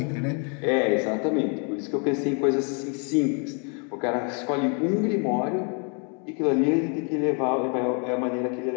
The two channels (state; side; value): quieter; right; 37.4 dB